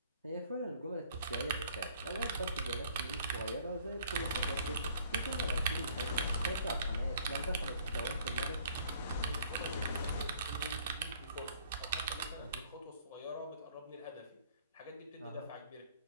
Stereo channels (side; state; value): both; inverted; correlation -0.57